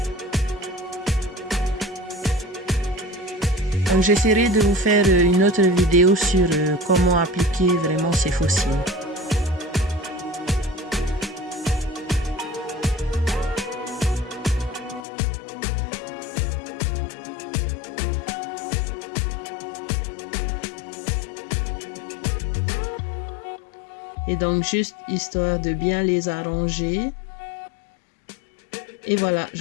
Donc j'essaierai de vous faire une autre vidéo sur comment appliquer vraiment ces faux cils. Et donc juste histoire de bien les arranger. Et voilà,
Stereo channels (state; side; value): drops out; right; at 15.1 s